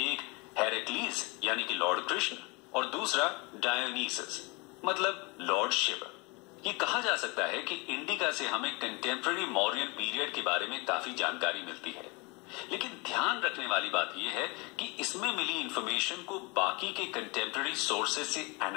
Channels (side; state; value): right; quieter; 27.8 dB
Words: हेरेक्लीस यानी कि लॉर्ड कृष्ण और दूसरा डायोनीसस मतलब लॉर्ड शिव। ये कहा जा सकता है कि इंडिका से हमें कंटेम्पररी मौर्यन पीरियड के बारे में काफी जानकारी मिलती है, लेकिन ध्यान रखने वाली बात यह है कि इसमें मिली इंफॉर्मेशन को बाकी के कंटेम्पररी सोर्सेस से